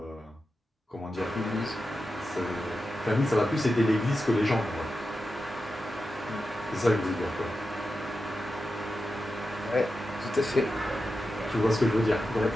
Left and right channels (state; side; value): normal; both; correlation 0.90